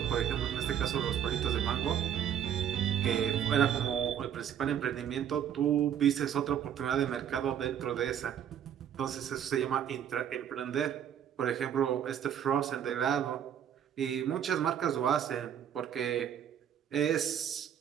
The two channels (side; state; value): left; quieter; 9.4 dB